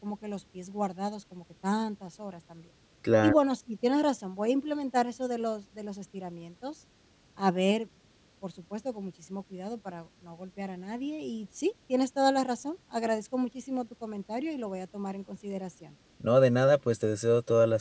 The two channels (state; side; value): identical; both; correlation 1.00